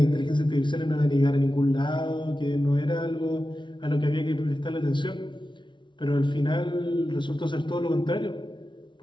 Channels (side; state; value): right; late; 0.23 ms